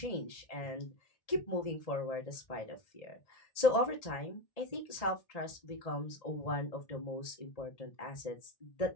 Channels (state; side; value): late; right; 1.8 ms